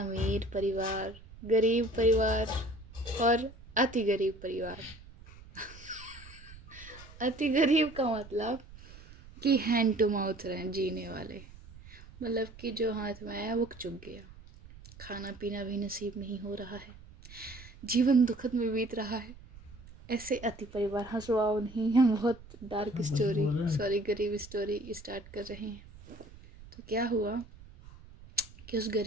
परिवार, गरीब परिवार और अति गरीब परिवार। अति गरीब का मतलब कि हैंड टू माउथ रहे जीने वाले, मतलब कि जो हाथ में आया वो चुक गया। खाना पीना भी नसीब नहीं हो रहा है, जीवन दुखद में बीत रहा है। ऐसे अति परिवार, हंसवाओ नहीं, हम बहुत डार्क स्टोरी गरीब स्टोरी स्टार्ट कर रहे हैं। तो क्या हुआ कि उस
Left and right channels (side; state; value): right; noise; rumble, 19 dB below the sound